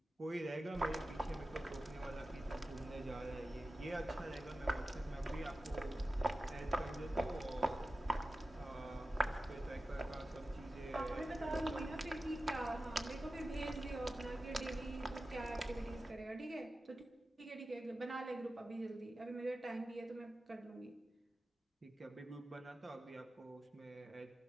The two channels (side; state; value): both; normal; correlation 0.94